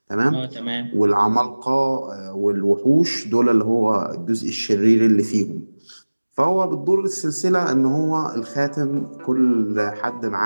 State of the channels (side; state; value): both; inverted; correlation -1.00